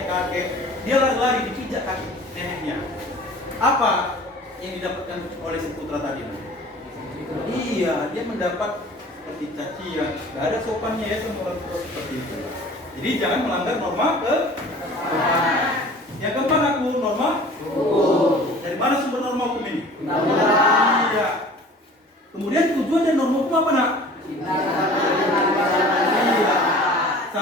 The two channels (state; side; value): normal; both; correlation 0.45